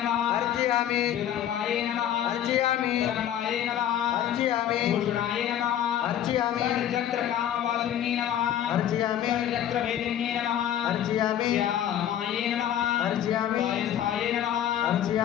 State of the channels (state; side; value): quieter; right; 10.6 dB